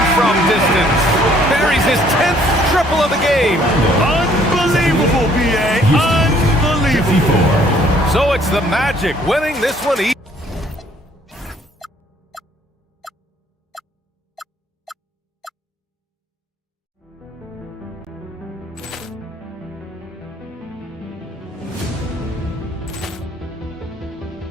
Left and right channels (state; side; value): normal; both; correlation 0.61